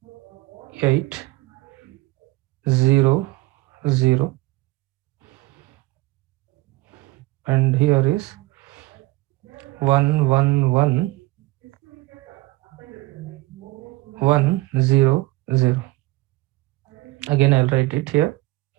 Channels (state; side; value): quieter; left; 20.5 dB